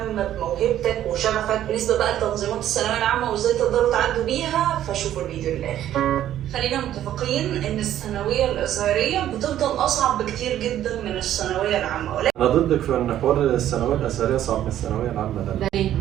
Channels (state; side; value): quieter; left; 11.8 dB